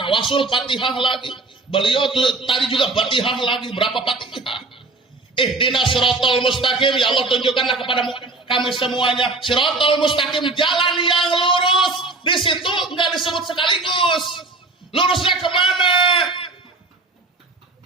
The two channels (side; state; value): left; quieter; 3.4 dB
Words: Fatihah lagi. Beliau tadi juga Fatihah lagi. Berapa Fatihah? Ihdinas siratal mustaqim, ya Allah tunjukkanlah kepada kami semuanya siratal mustaqim, jalan yang lurus. Di situ enggak disebut sekaligus. Lurusnya kemana?